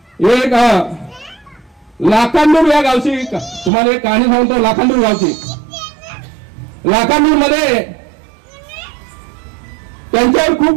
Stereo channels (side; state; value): left; drops out; at 3.7 s